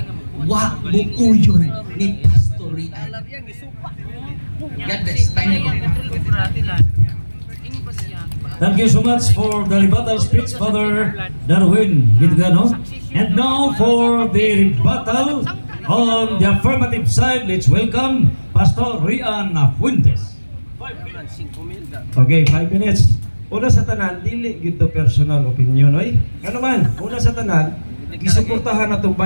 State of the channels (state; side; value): inverted; both; correlation -1.00